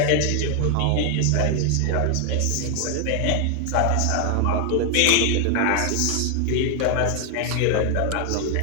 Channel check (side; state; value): both; different; correlation 0.00